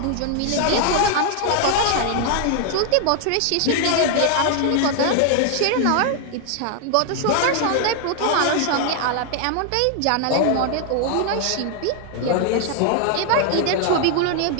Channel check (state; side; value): different; both; correlation 0.00